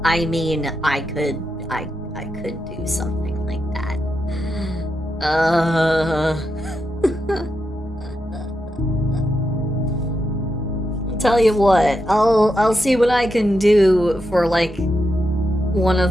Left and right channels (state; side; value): normal; both; correlation 0.85